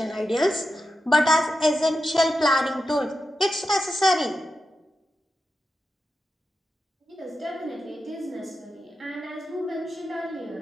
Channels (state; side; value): normal; both; correlation 0.89